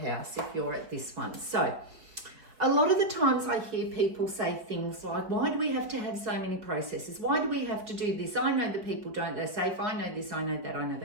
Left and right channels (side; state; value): left; late; 4.7 ms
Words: if you're at this one. So a lot of the times I hear people say things like, why do we have to have so many processes? Why do we have to do this? I know that people don't, they're safe. I know this, I know that, I know